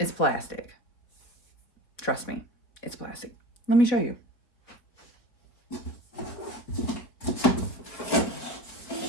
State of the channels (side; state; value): right; late; 4.3 ms